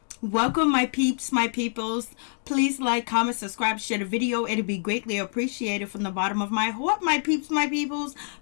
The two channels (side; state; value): right; silent; digital silence